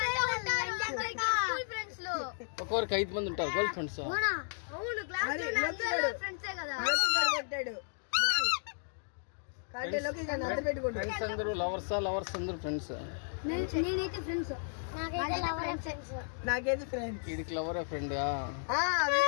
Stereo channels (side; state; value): right; silent; digital silence